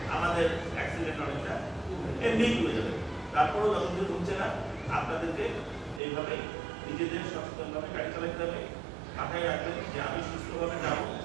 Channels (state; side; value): drops out; left; at 6.0 s